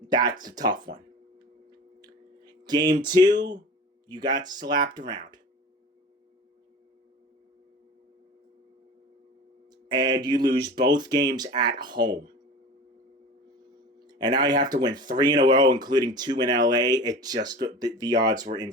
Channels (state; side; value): normal; both; correlation 0.36